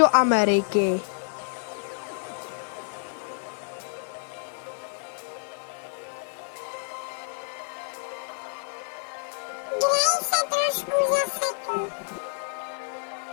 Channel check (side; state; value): right; silent; digital silence